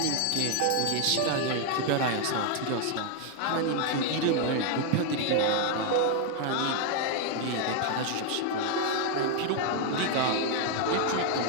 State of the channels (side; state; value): both; different; correlation 0.01